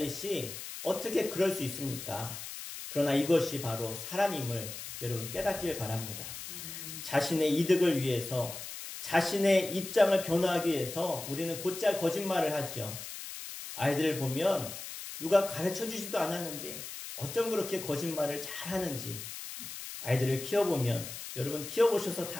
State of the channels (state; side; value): noise; left; hiss, 9 dB below the sound